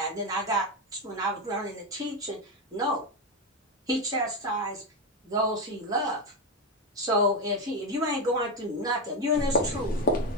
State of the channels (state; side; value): normal; both; correlation 0.11